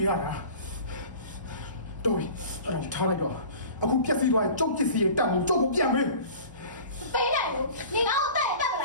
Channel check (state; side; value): inverted; both; correlation -0.41